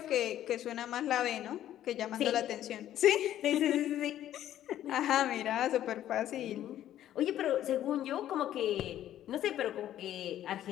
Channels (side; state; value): right; quieter; 12.0 dB